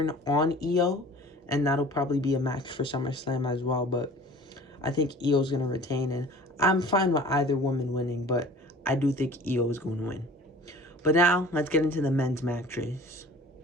on Io, and that'll probably be a match for SummerSlam as well, but I think Io's going to retain, and I'm fine with either woman winning, but I do think Io is going to win. But now, let's get into the men's matches.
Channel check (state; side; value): normal; both; correlation 0.45